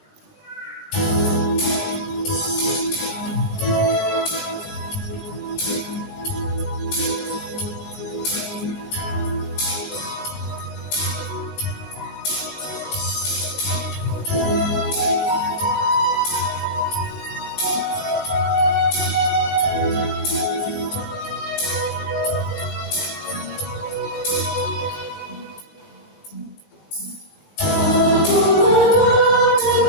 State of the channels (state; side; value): late; right; 19 ms